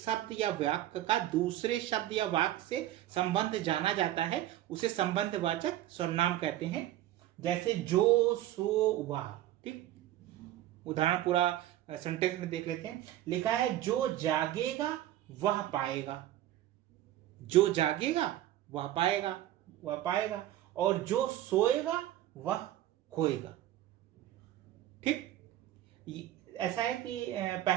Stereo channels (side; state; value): left; quieter; 13.7 dB